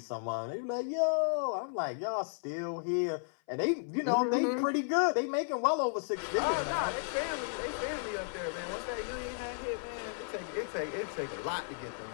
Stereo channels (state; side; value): silent; right; 55 dB below the other